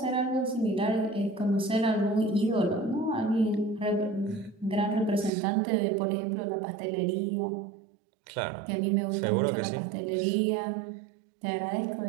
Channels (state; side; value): drops out; left; at 5.3 s